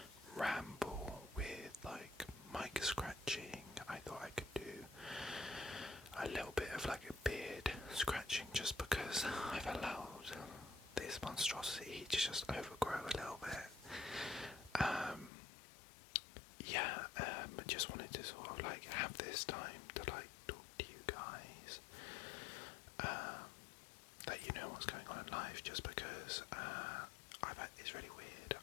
ramble with like mic scratching. I thought I could do a little bit of like a beard scratching just because I've allowed this monstrosity to just overgrow a little bit. Just wanted to sort of like have this time to like talk to you guys, let you know what's going on in life, just because it's really weird.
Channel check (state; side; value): drops out; right; at 15.3 s